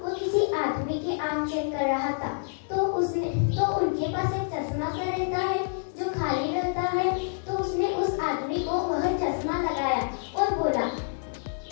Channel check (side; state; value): right; silent; digital silence